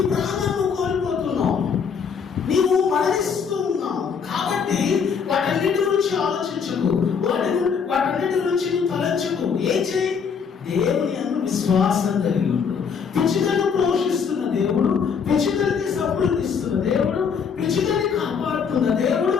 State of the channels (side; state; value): right; quieter; 6.4 dB